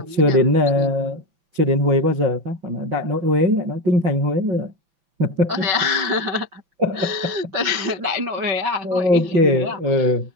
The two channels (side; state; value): left; late; 5.9 ms